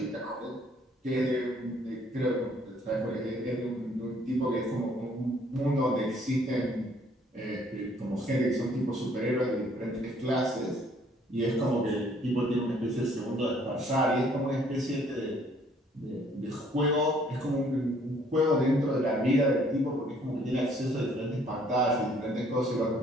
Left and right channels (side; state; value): both; normal; correlation 0.61